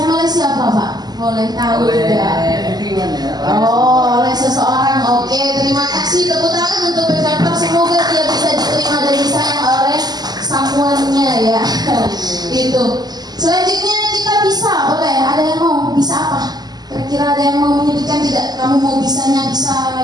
oleh siapa Pak? Boleh tahu Oleh tidak? lingkungan ya. Oh, oleh seseorang. Oke, terima kasih. Tepuk tangan untuk Pekarper. Semoga dia bisa diterima dan disayang oleh someone-nya ya. Itu. Selanjutnya kita bisa, boleh. Ada yang mau? Bisa apa? Kira-kira ada yang mau menyebutkan tidak? Kamu mau bisanya bisa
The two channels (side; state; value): left; late; 0.20 ms